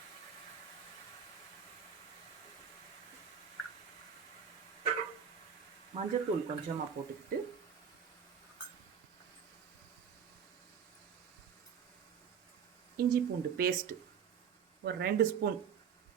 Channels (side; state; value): left; quieter; 7.5 dB